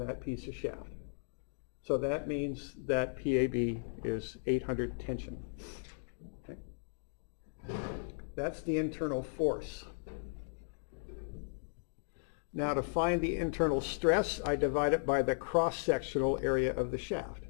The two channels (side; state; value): right; silent; digital silence